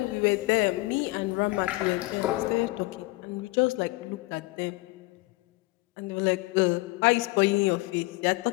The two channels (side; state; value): right; quieter; 22.5 dB